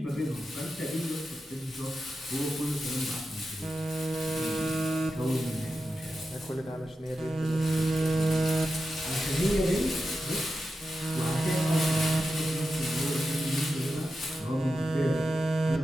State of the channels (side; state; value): both; normal; correlation 0.90